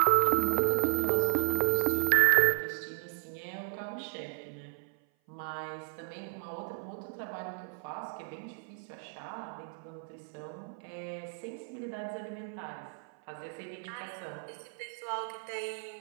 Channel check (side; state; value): left; silent; 55 dB below the other